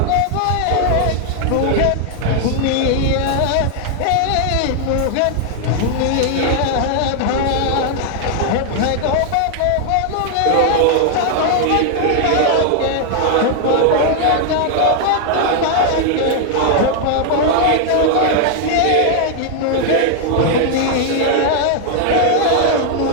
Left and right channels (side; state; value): both; different; correlation 0.00